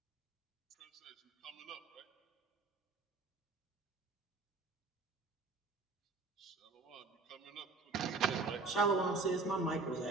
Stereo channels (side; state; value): left; quieter; 3.9 dB